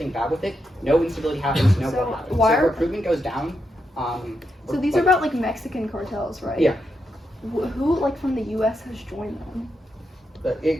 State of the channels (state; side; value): normal; both; correlation 0.84